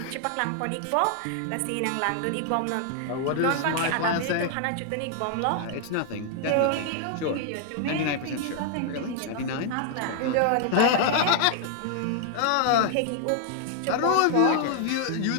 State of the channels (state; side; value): different; both; correlation 0.00